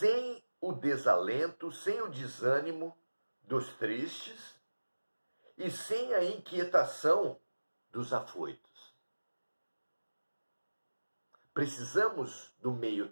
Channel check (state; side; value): inverted; both; correlation -1.00